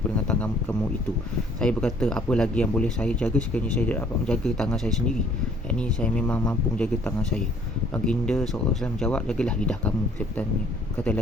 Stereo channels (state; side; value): normal; both; correlation 0.60